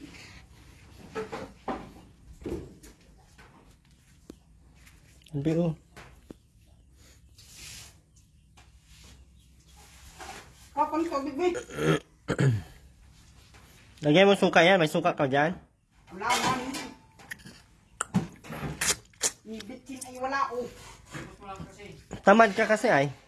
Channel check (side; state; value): both; identical; correlation 1.00